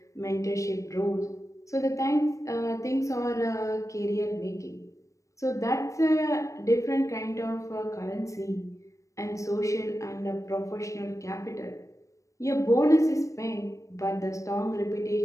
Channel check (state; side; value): late; right; 0.15 ms